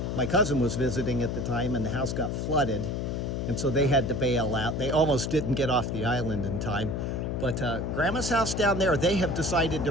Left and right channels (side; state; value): left; noise; hum, 2 dB below the sound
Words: My cousin was visiting at the time, and the house got flooded. And so they had to bail out. They almost didn't get off the island in time. But Grandma's house down there, they have decided